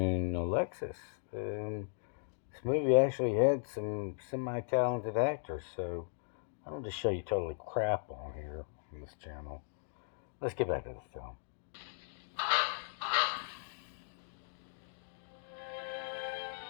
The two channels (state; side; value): silent; right; digital silence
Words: Alexis. This movie actually had some semi-talented actors, so I don't just show you totally crap on here on this channel. Let's get back to the film.